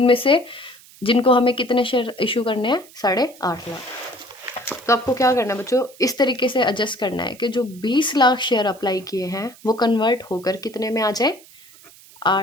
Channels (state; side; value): noise; right; hiss, 23 dB below the sound